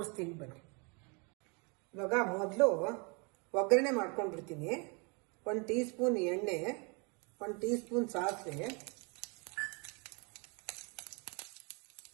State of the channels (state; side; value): quieter; left; 32.3 dB